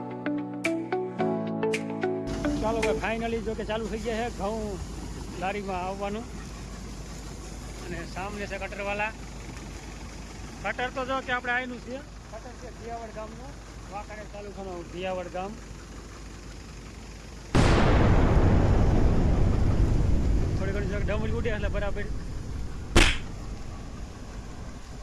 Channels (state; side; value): identical; both; correlation 1.00